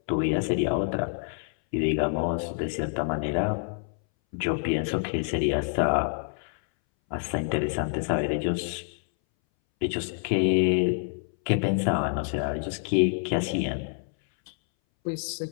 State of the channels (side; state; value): right; silent; 60 dB below the other